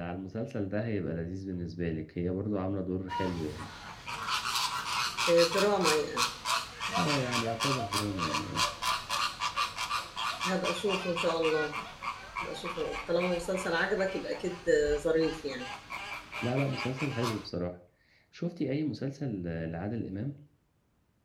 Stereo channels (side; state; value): both; identical; correlation 1.00